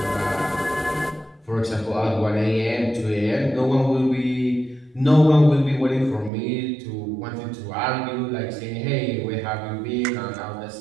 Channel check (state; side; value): drops out; left; at 6.3 s